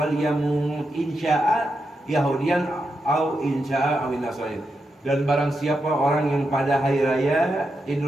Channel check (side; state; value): both; normal; correlation 0.86